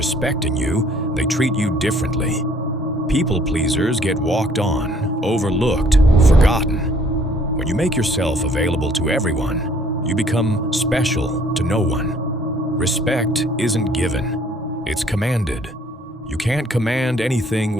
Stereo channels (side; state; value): both; normal; correlation 0.60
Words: you, they treat you differently. People pleasers get walked on, overlooked, forgotten. When you make yourself available to everyone, you become special to no one. Respect isn't given, it's commanded. You can't command anything